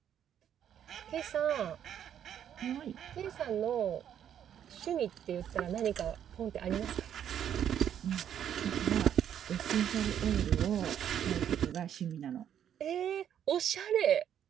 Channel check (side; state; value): left; quieter; 9.6 dB